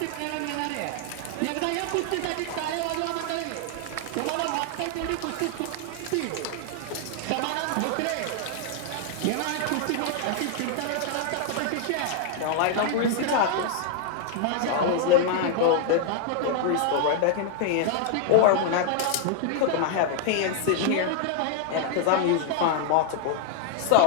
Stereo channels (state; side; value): different; both; correlation 0.00